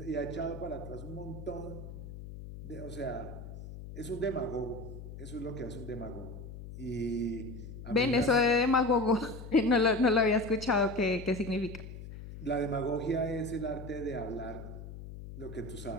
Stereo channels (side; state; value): left; noise; hum, 11 dB below the sound